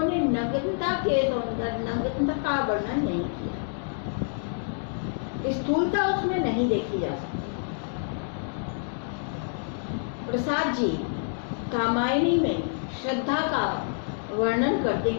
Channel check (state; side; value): silent; right; digital silence